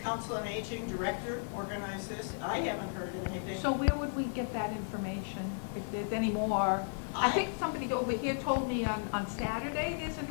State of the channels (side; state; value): right; silent; 55 dB below the other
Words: Council on Aging director organized this. I haven't heard of anything. So where would we get that information, if there's any more? I think somebody over here told me on Saturday there's